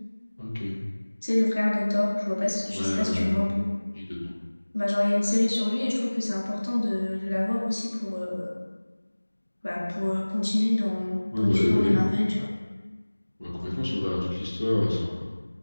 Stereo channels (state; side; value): inverted; both; correlation -1.00